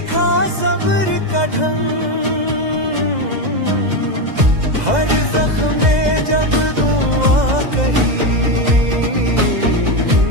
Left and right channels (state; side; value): late; left; 2.0 ms